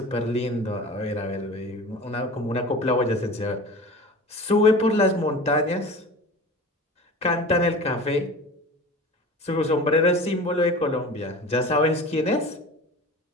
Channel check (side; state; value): both; normal; correlation 0.36